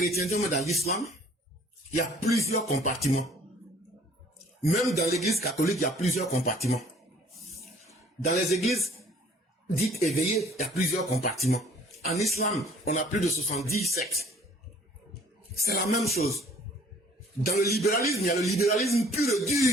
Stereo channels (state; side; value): normal; both; correlation 0.55